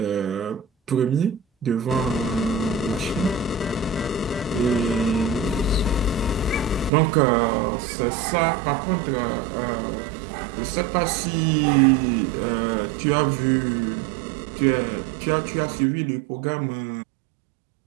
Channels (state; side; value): drops out; left; at 6.9 s